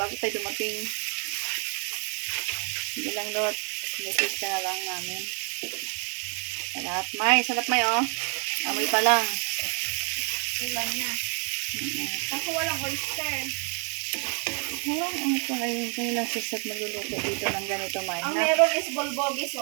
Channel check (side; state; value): left; quieter; 39.4 dB